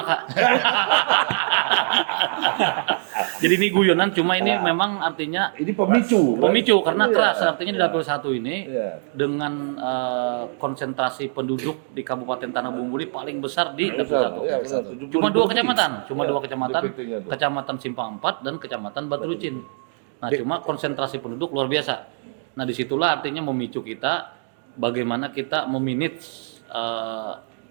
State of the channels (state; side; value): silent; left; 58 dB below the other